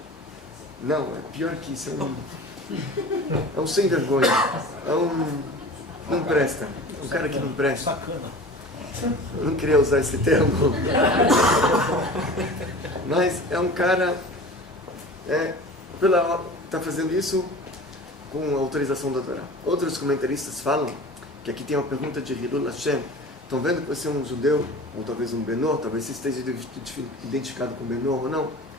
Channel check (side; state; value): both; normal; correlation 0.38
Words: Não, é pior que isso. É um sem vergonha. Não presta. Um cara que não presta. Eu não queria usar esse termo. Mas é um cara está fazendo isso com a autorização da Torá. Outros comentaristas falam que aqui tem uma pergunta de Hilul Hashem. Estão vendo que você é um judeu, ou talvez um Benor, talvez você esteja identificado com Benor ou não.